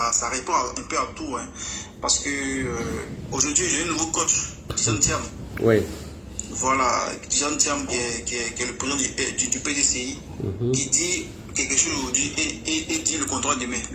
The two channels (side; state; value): both; identical; correlation 1.00